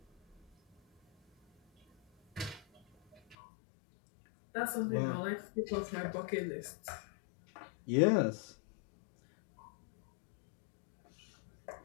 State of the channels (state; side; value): drops out; right; at 3.4 s